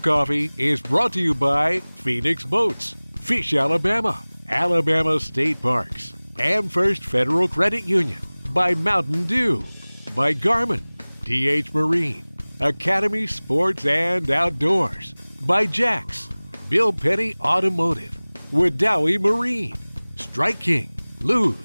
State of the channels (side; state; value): both; inverted; correlation -1.00